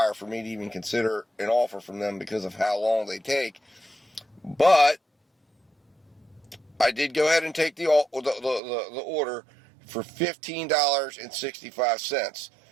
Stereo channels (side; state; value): left; drops out; at 8.6 s